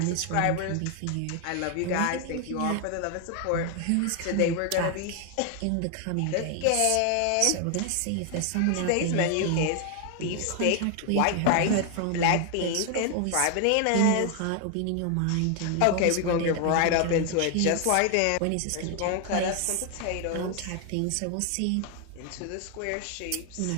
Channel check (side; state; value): both; different; correlation 0.00